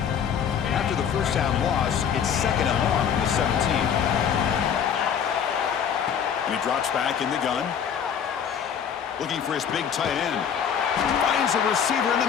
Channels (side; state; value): right; quieter; 8.0 dB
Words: First down loss, it's second and long from the 17. And he drops back in the gun. Looking for his big tight end. Finds a receiver in